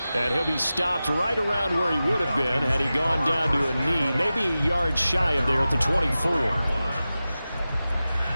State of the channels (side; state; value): both; inverted; correlation -0.95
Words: And he'll be stopped right around where he would have been had he gone down to a knee, maybe a yard shy of there at the 24.